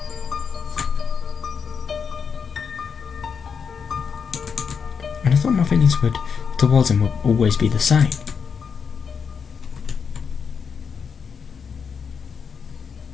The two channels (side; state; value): right; quieter; 6.3 dB